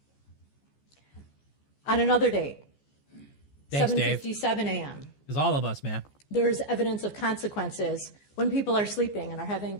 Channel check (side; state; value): right; late; 14 ms